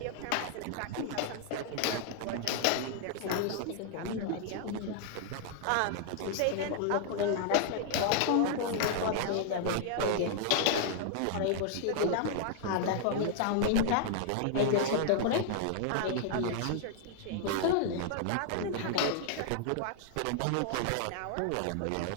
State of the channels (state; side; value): different; both; correlation 0.00